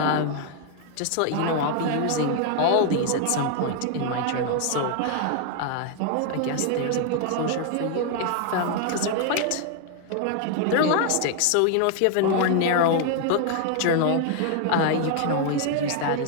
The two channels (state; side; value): different; both; correlation 0.00